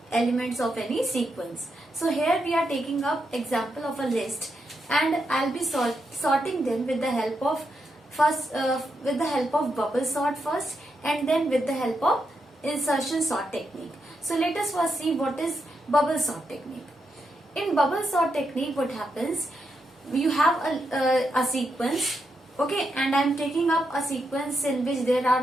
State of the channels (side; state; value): both; normal; correlation 0.83